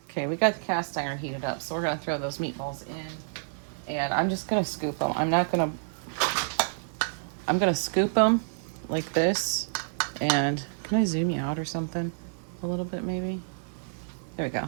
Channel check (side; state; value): left; silent; digital silence